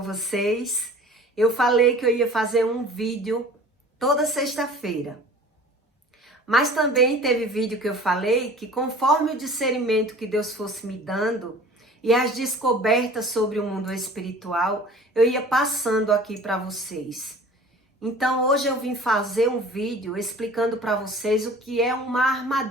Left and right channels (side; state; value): both; normal; correlation 0.45